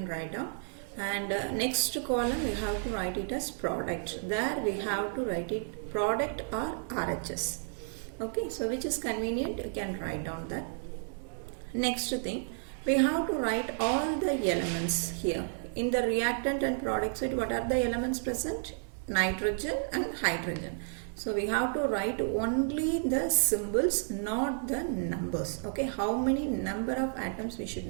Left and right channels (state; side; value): silent; left; digital silence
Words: write down. And next column, we have to write it as product. There we have to write it product or RHS. Okay, so which is convenient, you can write down that. Next thing, we have to write all the elements here. In the reactant and product side, what are the elements present? Nitrogen and hydrogen. So we have to write only the symbols, not the numbers. Okay, how many number of atoms we should